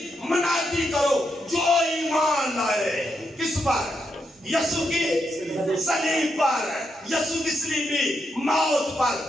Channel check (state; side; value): normal; both; correlation 0.82